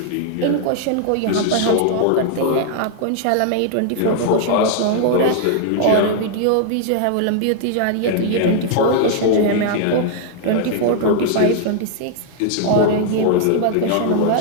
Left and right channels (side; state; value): both; different; correlation 0.00